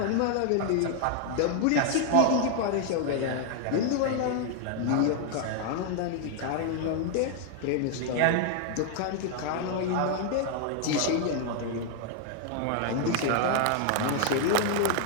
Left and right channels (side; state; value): both; different; correlation 0.00